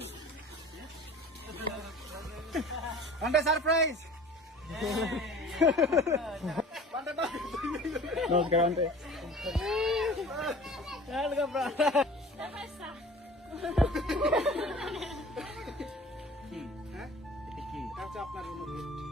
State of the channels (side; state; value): both; normal; correlation 0.43